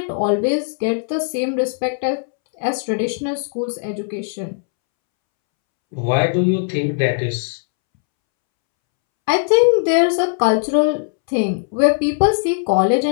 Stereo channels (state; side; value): silent; right; 67 dB below the other